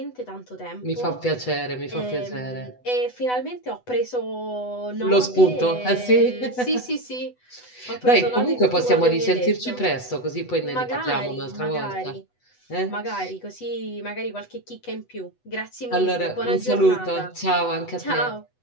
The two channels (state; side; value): late; right; 8.0 ms